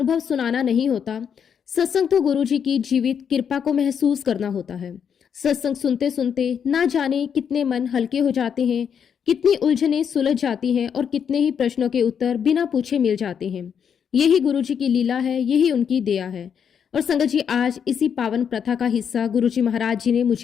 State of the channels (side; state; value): right; quieter; 7.6 dB